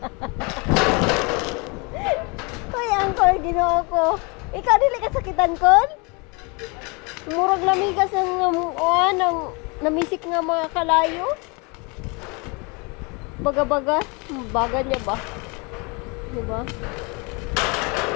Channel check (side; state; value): right; quieter; 30.3 dB